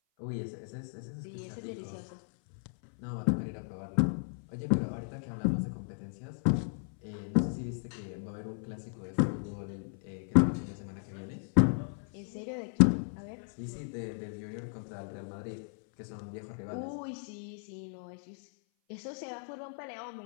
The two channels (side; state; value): right; silent; 54 dB below the other